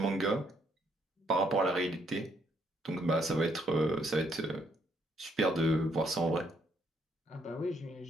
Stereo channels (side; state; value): both; normal; correlation 0.71